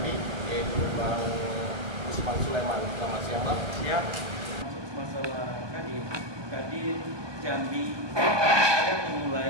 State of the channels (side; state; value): left; late; 1.2 ms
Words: yaitu Bang Usman Sulaiman. Selamat siang, Bang. Ya, masuk masalah Kadin Jambi, saya